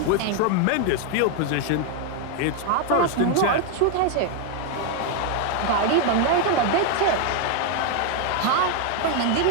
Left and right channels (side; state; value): both; different; correlation 0.01